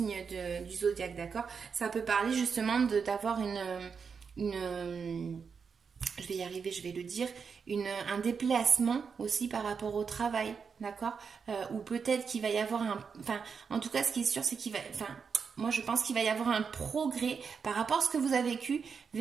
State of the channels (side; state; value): left; quieter; 5.9 dB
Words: du zodiaque, d'accord. Ça peut parler justement d'avoir je vais y arriver, je vais le dire, un déplacement aussi par rapport au travail, d'accord. Ou peut-être qu'il va y avoir en tout cas, ce qui est sûr, c'est moi je pense qu'il va y avoir un progrès par rapport à ce que vous avez